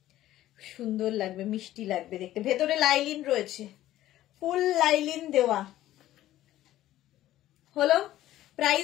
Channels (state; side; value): quieter; right; 14.1 dB